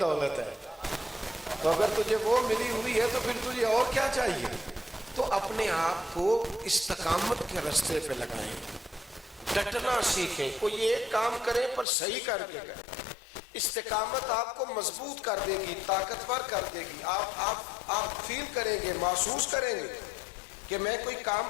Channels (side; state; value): right; drops out; at 11.9 s